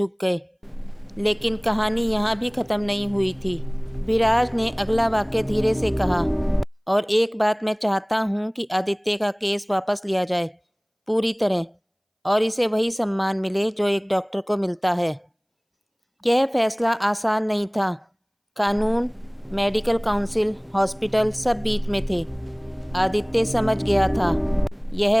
गए। लेकिन कहानी यहाँ भी ख़त्म नहीं हुई थी। विराज ने अगला वाक्य धीरे से कहा, और एक बात मैं चाहता हूँ कि आदित्य का केस वापस लिया जाए पूरी तरह, और इसे वही सम्मान मिले जो एक डॉक्टर को मिलता है। यह फैसला आसान नहीं था। कानून, मेडिकल काउंसिल, हॉस्पिटल सब बीच में थे। आदित्य समझ गया था, यह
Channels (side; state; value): both; identical; correlation 1.00